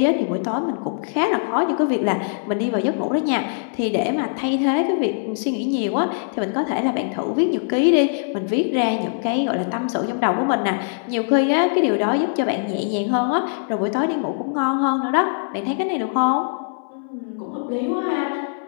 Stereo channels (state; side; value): silent; right; 64 dB below the other